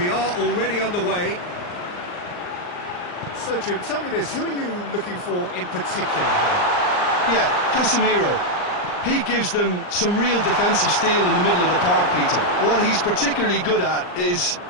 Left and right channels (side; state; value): right; late; 39 ms